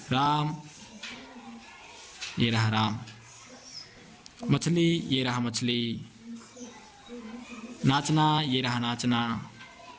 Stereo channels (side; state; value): both; identical; correlation 1.00